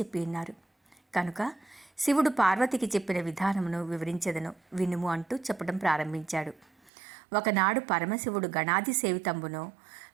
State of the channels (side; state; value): left; drops out; at 6.9 s